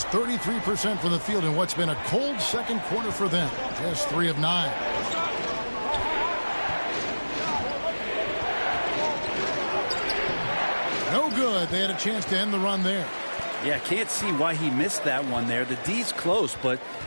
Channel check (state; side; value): inverted; both; correlation -1.00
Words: 33% from the field in what's been a cold second quarter for them. Just 3 of 9. No good. They had a chance to end the run there. Yeah, can't see why he missed that one there. The D's close, but